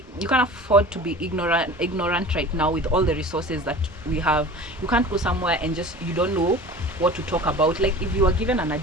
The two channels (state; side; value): normal; both; correlation 0.39